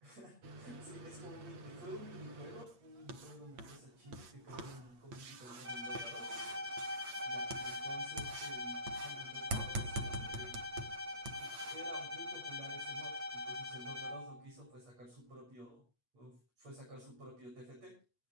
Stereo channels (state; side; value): late; left; 8.5 ms